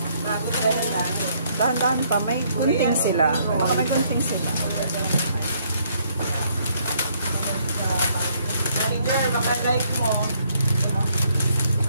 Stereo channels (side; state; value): both; inverted; correlation -0.68